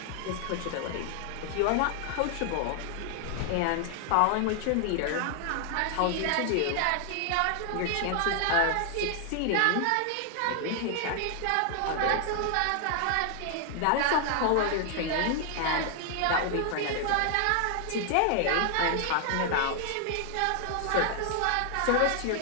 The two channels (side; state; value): both; different; correlation 0.00